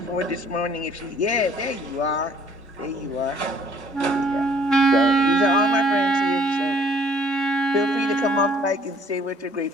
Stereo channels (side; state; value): both; normal; correlation 0.58